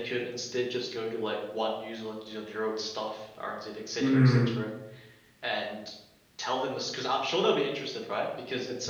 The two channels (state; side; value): identical; both; correlation 1.00